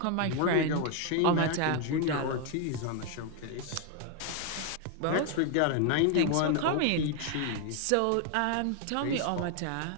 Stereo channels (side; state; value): both; different; correlation 0.01